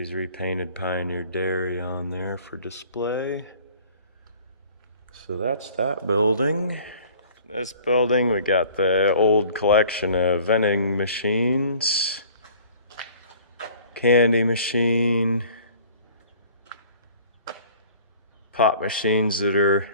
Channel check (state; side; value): inverted; both; correlation -0.50